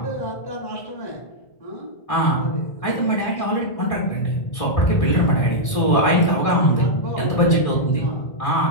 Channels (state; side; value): late; right; 1.7 ms